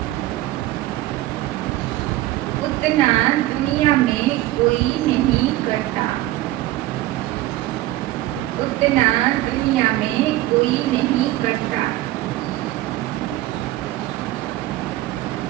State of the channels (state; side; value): quieter; left; 16.2 dB